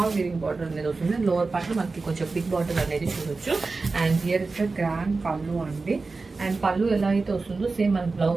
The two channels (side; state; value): left; quieter; 3.9 dB